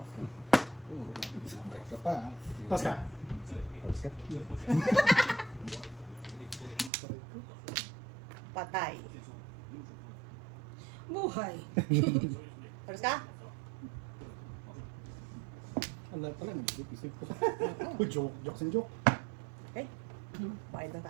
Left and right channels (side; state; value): left; drops out; at 6.9 s